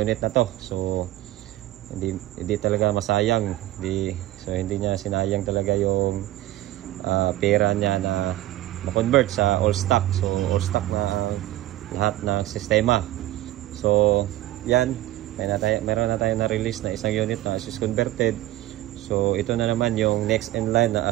na to. So hindi talaga masayang, hindi niya sinayang talaga yung pera niya na ma-convert sa all stock. So all stock na lahat ng sistema. So yan, meron na tayo na release na isang unit na as is converted. So ito na naman yung next in line na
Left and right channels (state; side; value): quieter; left; 15.3 dB